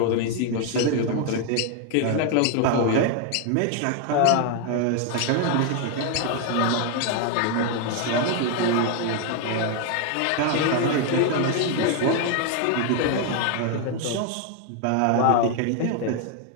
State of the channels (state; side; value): different; both; correlation 0.00